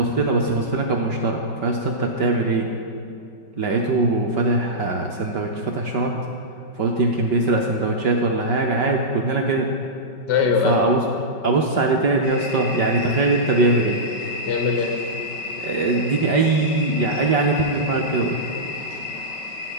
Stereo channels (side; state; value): right; late; 5.3 ms